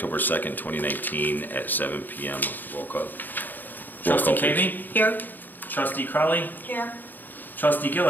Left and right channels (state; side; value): late; right; 0.089 ms